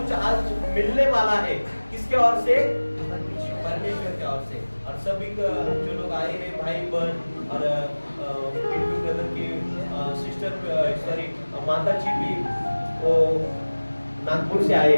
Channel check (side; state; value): both; inverted; correlation -1.00